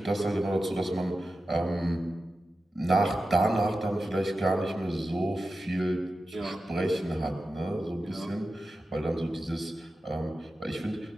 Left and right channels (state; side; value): normal; both; correlation 0.92